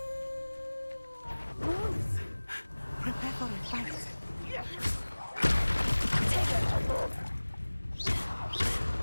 Wolves! Prepare for a fight.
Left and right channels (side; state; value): both; inverted; correlation -1.00